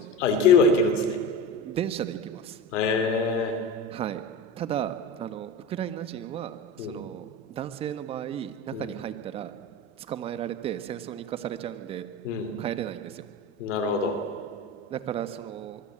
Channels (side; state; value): both; normal; correlation 0.27